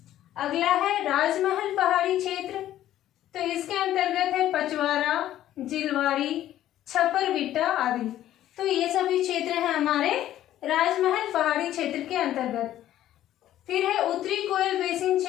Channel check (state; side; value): quieter; right; 12.8 dB